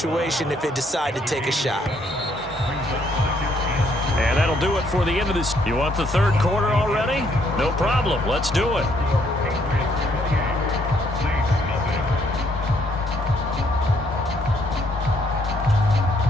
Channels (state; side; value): normal; both; correlation 0.69